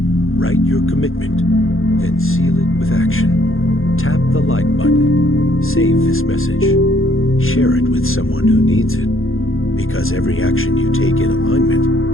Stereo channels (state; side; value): late; right; 0.60 ms